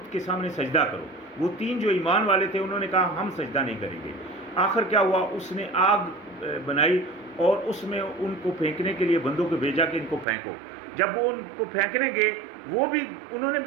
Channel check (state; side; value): drops out; left; at 10.2 s